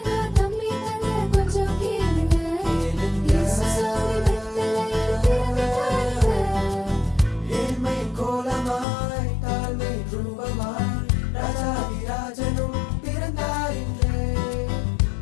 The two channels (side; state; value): right; drops out; at 8.8 s